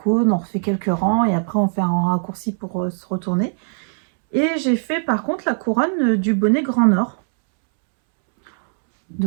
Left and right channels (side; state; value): left; silent; 66 dB below the other